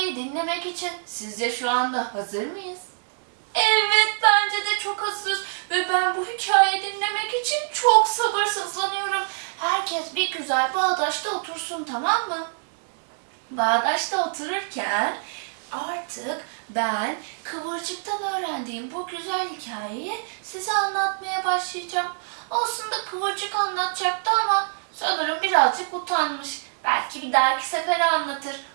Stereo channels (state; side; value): silent; left; 62 dB below the other